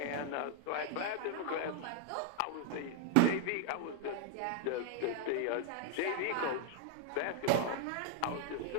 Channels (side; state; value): both; different; correlation 0.00